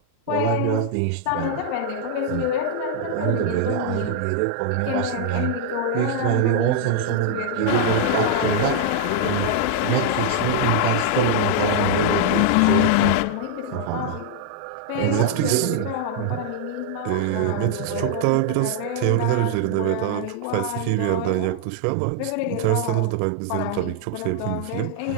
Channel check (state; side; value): different; both; correlation -0.01